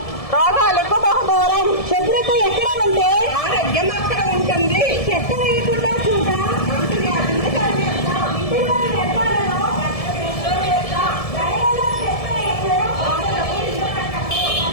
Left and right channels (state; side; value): late; right; 1.7 ms